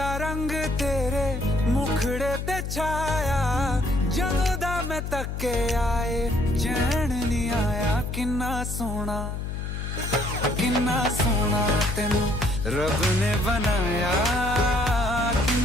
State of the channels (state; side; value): noise; left; hum, 4 dB below the sound